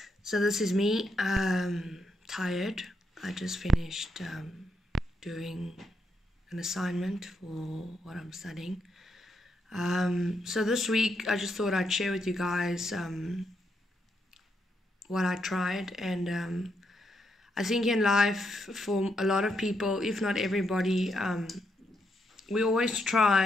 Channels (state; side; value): normal; both; correlation 0.80